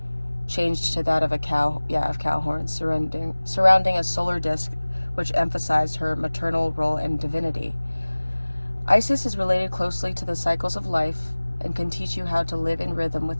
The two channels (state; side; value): inverted; both; correlation -1.00